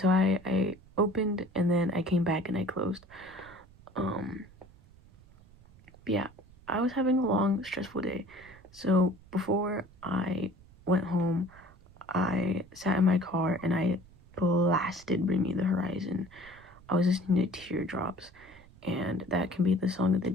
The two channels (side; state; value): right; noise; rumble, 24 dB below the sound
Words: I opened and then I came back and I closed. Um, but yeah, I was having a long, stressful day. So before I went home, I sat in my car and I blasted Bring Me the Horizon. I was listening to Teardrops, and that can be the song of the